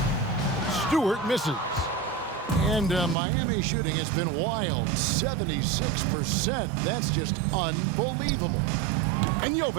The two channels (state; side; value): drops out; left; at 3.2 s